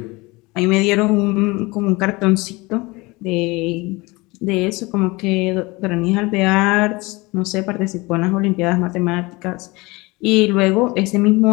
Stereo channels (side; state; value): right; quieter; 23.6 dB